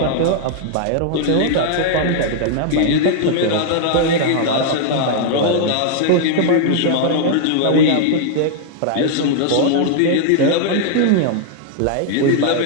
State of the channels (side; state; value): both; different; correlation -0.01